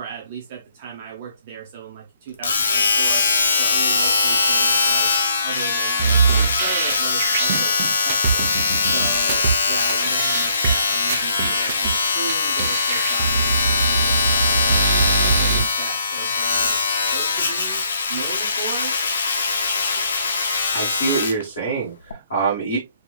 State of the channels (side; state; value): both; inverted; correlation -0.69